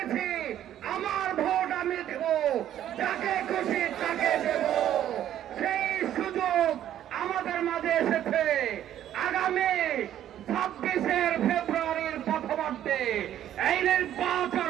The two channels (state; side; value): quieter; left; 11.4 dB